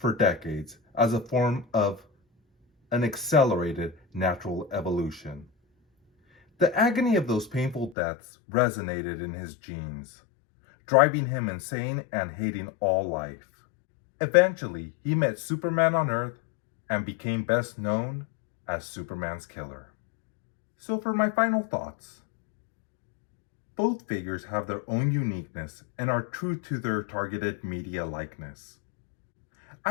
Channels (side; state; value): right; drops out; at 8.0 s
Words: decades as a form of an accelerated natural evolution. The agony of those painful deaths resonated in his genes, driving him insane and hating all life. Eventually, he met Superman on Earth and became best known as Superman's killer. So for my final thoughts, both figures have their own uniqueness and are true to their targeted media likeness.